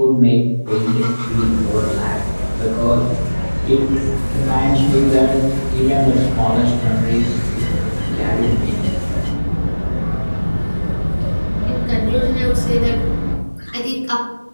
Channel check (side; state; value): both; inverted; correlation -1.00